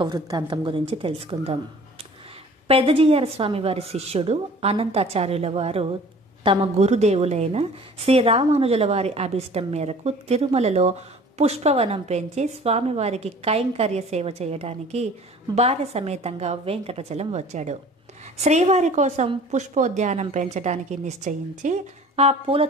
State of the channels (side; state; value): both; normal; correlation 0.47